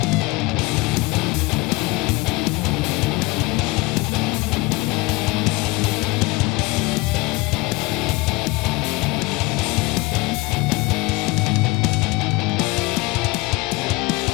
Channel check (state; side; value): quieter; right; 23.1 dB